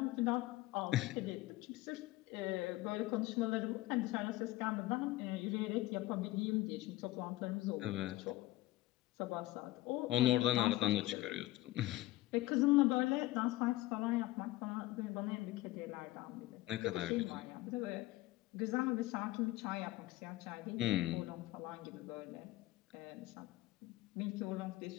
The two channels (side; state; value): right; quieter; 17.6 dB